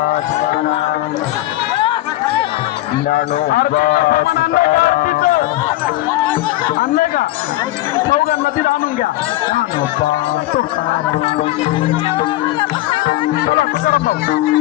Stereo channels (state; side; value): quieter; right; 16.6 dB